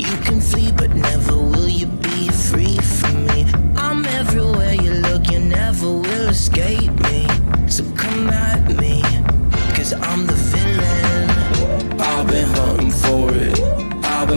can flee, but never will you be free from me. I'm everywhere you look, you never will escape me. So come at me, cause I'm the villain. I've been hunting for it, I've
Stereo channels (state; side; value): inverted; both; correlation -1.00